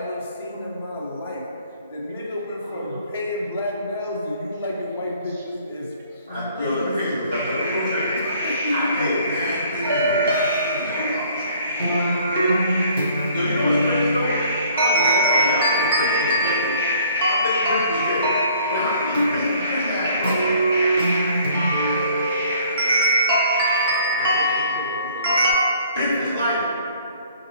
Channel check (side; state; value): both; inverted; correlation -0.57